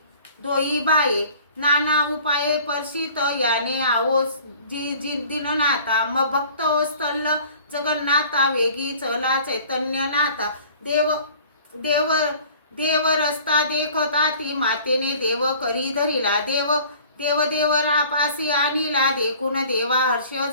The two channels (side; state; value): both; inverted; correlation -0.49